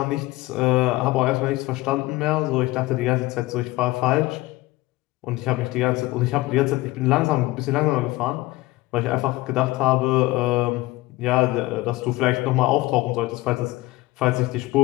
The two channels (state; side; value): quieter; right; 19.4 dB